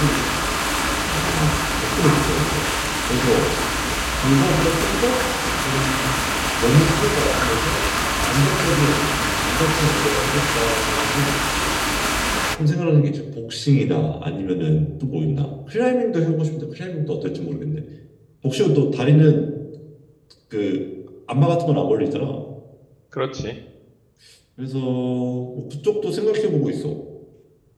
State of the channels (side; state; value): both; identical; correlation 1.00